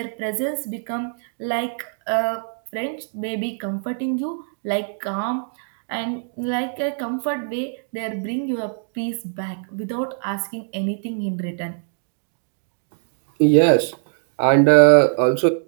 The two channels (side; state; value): left; silent; digital silence